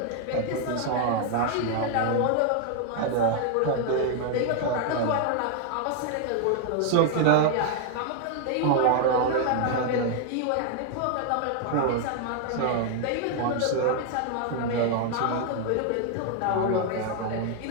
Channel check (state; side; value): different; both; correlation 0.00